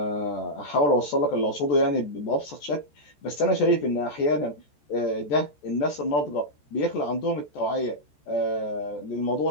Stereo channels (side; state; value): right; late; 14 ms